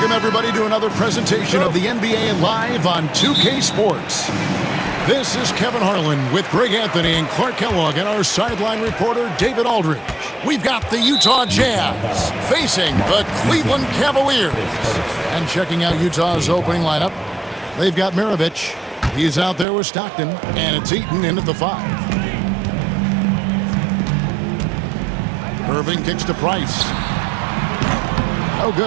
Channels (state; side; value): drops out; left; at 19.7 s